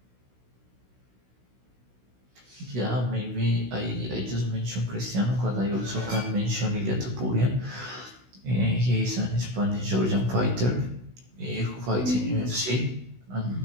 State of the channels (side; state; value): left; late; 16 ms